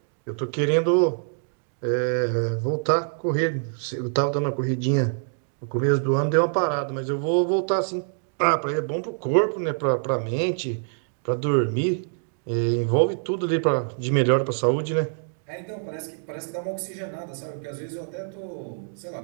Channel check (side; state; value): left; silent; digital silence